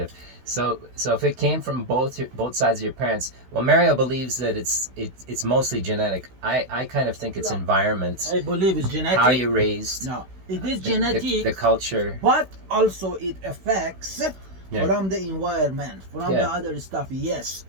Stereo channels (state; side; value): late; left; 16 ms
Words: So if it came from both sides of your parents, well, Mario believes that it's mostly genetic. I kind of think it's No. environment, I believe it's genetic. how you're raised, No, it is the- genetic, the culture. but also it affects Yeah. from the environment, from Yeah. the other stuff. Yes,